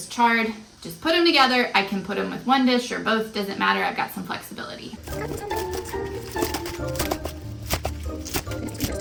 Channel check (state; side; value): identical; both; correlation 1.00